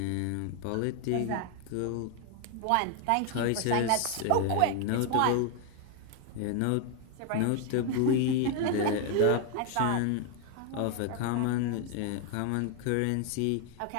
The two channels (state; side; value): different; both; correlation 0.01